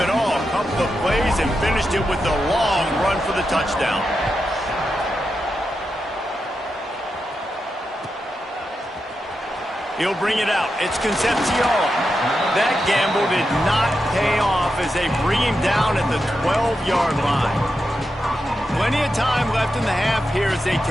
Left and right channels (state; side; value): normal; both; correlation 0.88